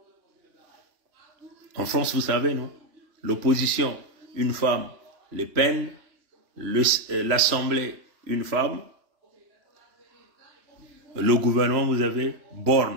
En France, vous savez, non? L'opposition, une femme, Le Pen, l'Assemblée, une femme. Le gouvernement, vous avez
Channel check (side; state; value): left; late; 3.0 ms